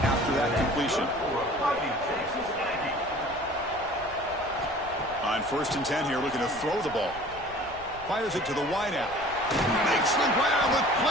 after that completion. On 1st and 10 here, looking to throw the ball. Fires it to the wideout. Makes the grab with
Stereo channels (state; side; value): noise; left; rumble, 20 dB below the sound